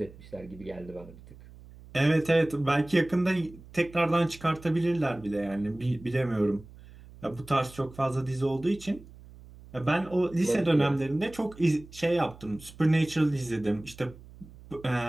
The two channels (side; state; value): right; noise; hum, 20 dB below the sound